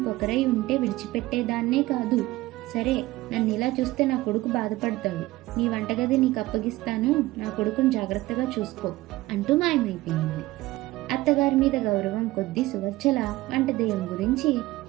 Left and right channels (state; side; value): quieter; left; 18.4 dB